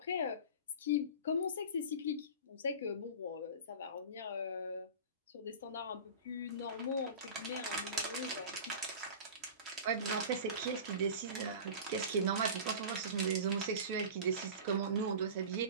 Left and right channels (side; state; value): both; inverted; correlation -0.34